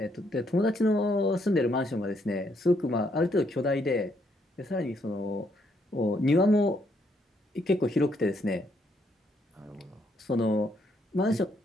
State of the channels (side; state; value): both; normal; correlation 0.73